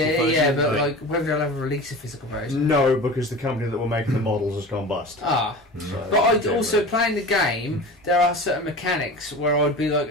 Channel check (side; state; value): both; normal; correlation 0.34